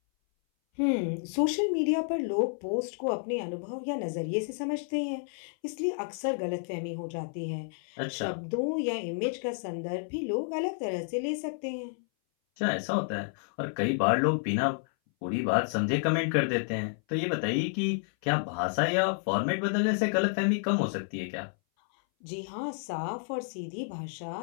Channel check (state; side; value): silent; right; 58 dB below the other